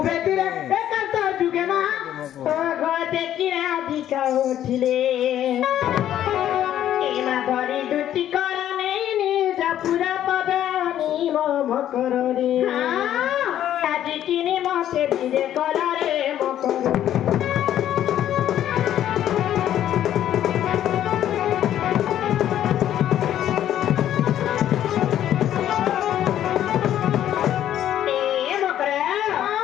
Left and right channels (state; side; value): quieter; right; 11.4 dB